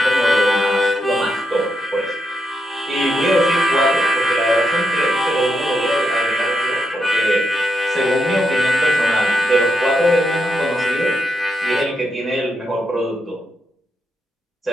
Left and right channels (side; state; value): both; normal; correlation 0.82